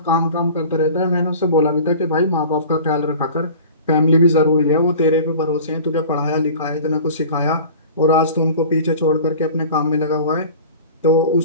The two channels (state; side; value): inverted; both; correlation -0.41